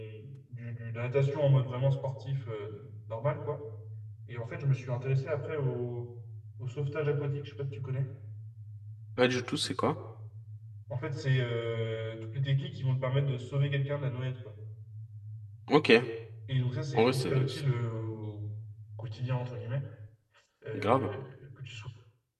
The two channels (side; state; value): both; identical; correlation 1.00